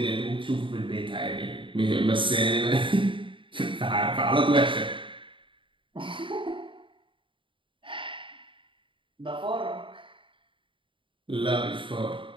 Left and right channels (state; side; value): late; left; 0.25 ms